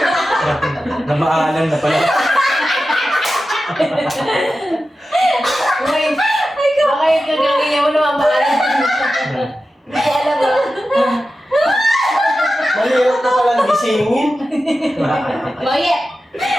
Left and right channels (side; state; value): both; normal; correlation 0.93